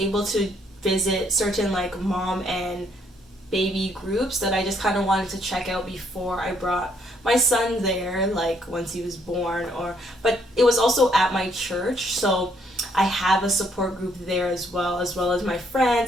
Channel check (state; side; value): normal; both; correlation 0.70